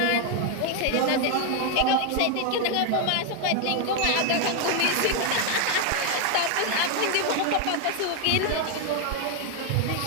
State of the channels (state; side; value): different; both; correlation 0.01